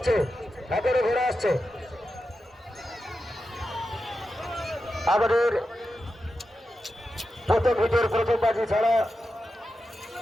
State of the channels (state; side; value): normal; both; correlation 0.90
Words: একেবারে ঘোরা আসছে। আমাদের প্রথম হিটের প্রথম বাজি ছাড়া